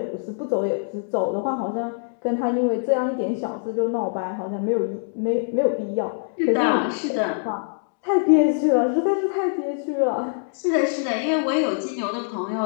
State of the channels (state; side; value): silent; right; digital silence